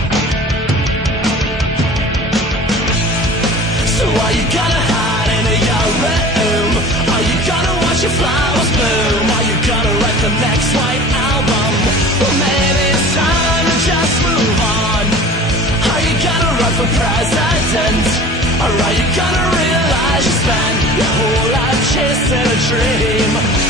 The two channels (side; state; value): both; normal; correlation 0.41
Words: So are you gonna hide in your room? Are you gonna watch your flowers bloom? Are you gonna write the next white album? Well, maybe it's time to just move on. Are you gonna run for president? Or are you gonna realize you spent your whole life chasing a dream?